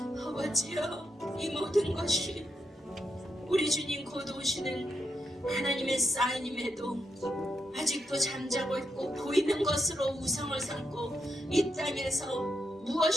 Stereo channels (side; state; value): both; normal; correlation 0.83